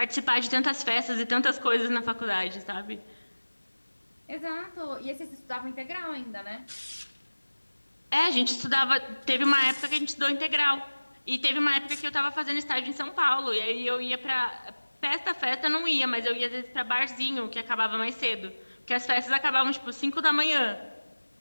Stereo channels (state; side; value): inverted; both; correlation -1.00